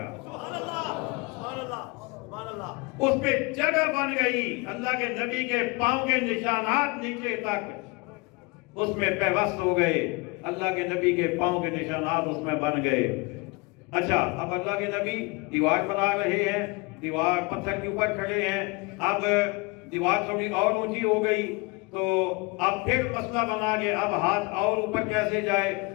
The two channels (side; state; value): right; quieter; 26.7 dB